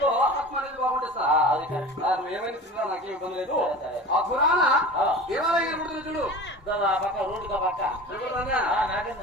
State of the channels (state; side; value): normal; both; correlation 0.36